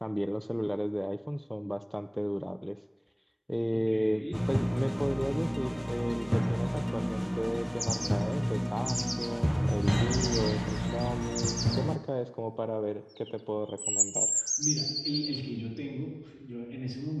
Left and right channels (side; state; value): both; identical; correlation 1.00